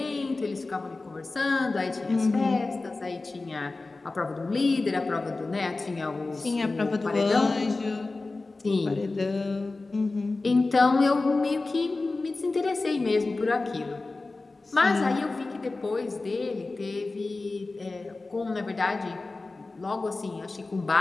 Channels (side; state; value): right; quieter; 3.4 dB